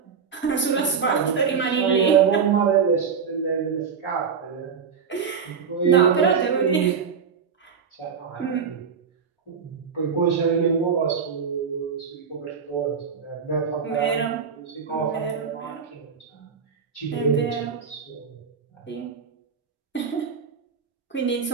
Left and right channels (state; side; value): quieter; left; 6.3 dB